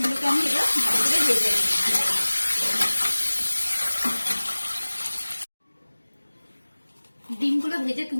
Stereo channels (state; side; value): inverted; both; correlation -1.00